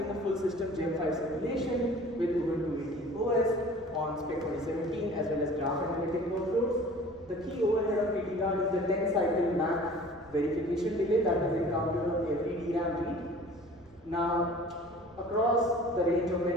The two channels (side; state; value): right; noise; rumble, 27 dB below the sound